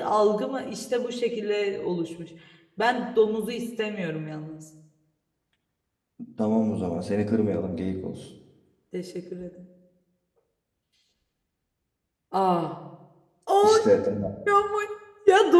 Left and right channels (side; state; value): both; identical; correlation 1.00